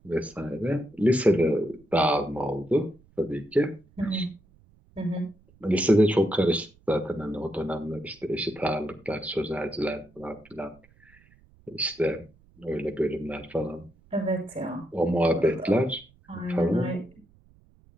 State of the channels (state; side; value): noise; right; rumble, 29 dB below the sound